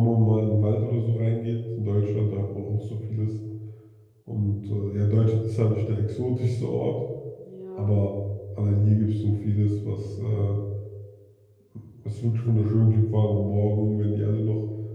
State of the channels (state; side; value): identical; both; correlation 1.00